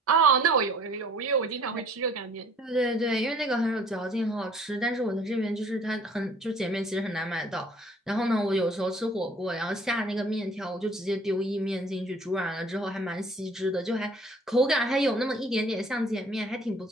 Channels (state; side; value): normal; both; correlation 0.54